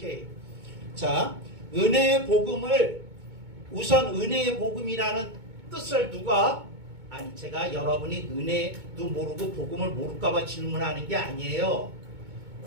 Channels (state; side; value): late; left; 2.2 ms